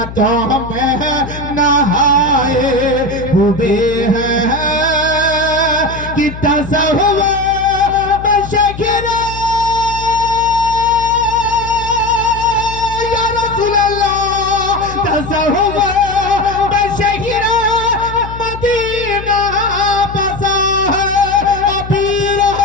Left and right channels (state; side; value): noise; left; hum, 11 dB below the sound